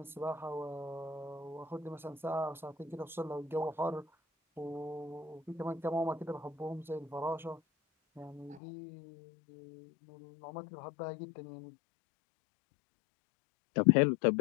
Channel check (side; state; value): right; drops out; at 8.6 s